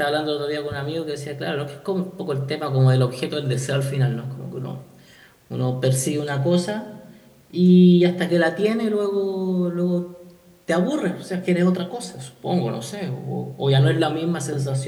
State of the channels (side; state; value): both; identical; correlation 1.00